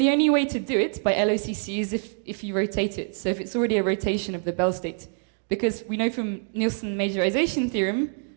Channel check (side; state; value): left; silent; 57 dB below the other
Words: only way to do it by LOCC is if you rotate it. So if it's already a rotation of the Bell state. Because we know from Nielsen majorization theorem